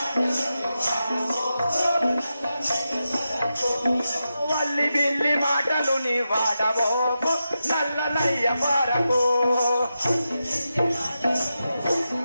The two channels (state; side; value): inverted; both; correlation -0.89